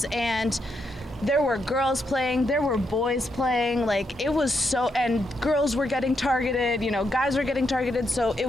and there were girls playing, there were boys playing. It was and girls were getting targeted, guys were getting targeted. So it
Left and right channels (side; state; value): both; normal; correlation 0.81